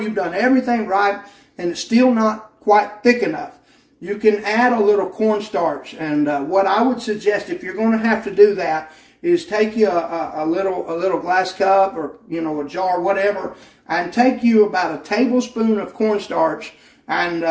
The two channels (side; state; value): both; identical; correlation 1.00